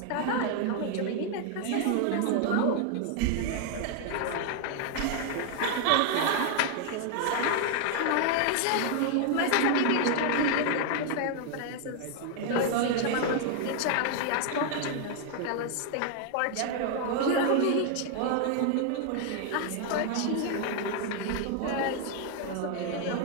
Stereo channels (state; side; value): different; both; correlation 0.00